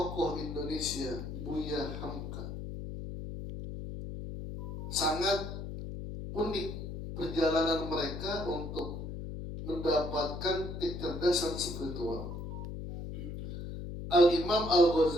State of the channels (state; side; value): noise; left; hum, 7 dB below the sound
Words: Indonesia Buya Hamka. Sangat unik perjalanan mereka untuk mendapatkan kecerdasan spiritual. Al-Imam